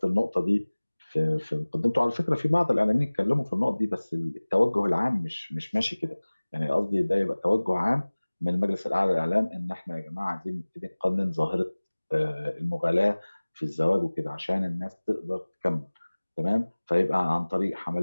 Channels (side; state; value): both; inverted; correlation -1.00